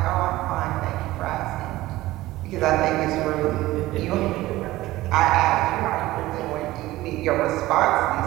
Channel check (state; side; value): quieter; left; 17.3 dB